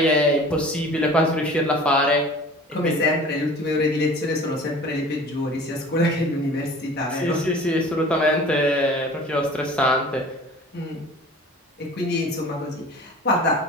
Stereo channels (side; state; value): both; normal; correlation 0.44